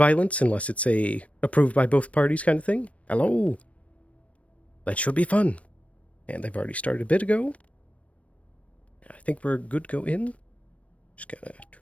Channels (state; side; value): late; right; 0.064 ms